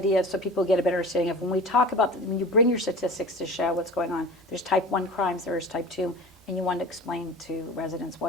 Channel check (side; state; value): both; normal; correlation 0.37